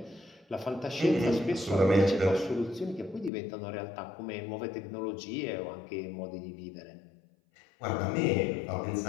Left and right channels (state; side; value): drops out; right; at 3.3 s